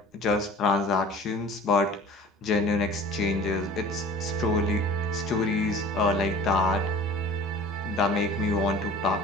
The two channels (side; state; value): both; normal; correlation 0.44